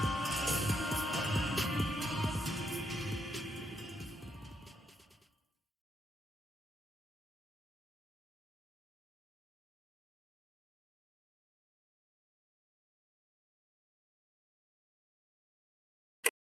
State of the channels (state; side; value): normal; both; correlation 0.79